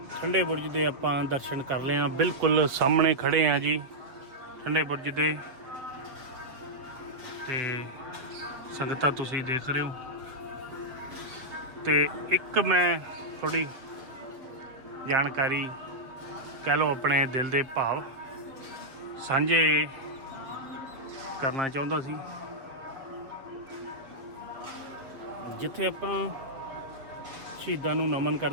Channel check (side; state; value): left; late; 7.3 ms